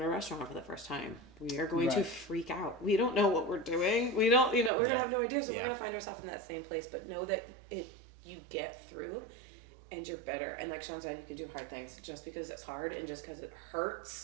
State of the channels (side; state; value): left; drops out; at 4.7 s